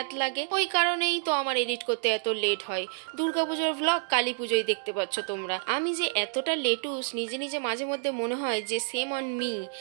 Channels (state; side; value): silent; left; digital silence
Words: লাগে, ওই কারণেই তো আমার এডিট করতে এত লেট হয়। দুর্গাপুজোর ভ্লগ কালী পুজোয় দেখতে পাচ্ছ তোমরা। আমি যে এতটা লেটুস নিজে মাঝে মধ্যে মনে হয় যে সেম অন মি।